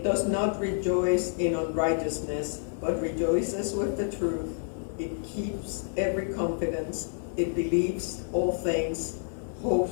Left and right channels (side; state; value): right; silent; digital silence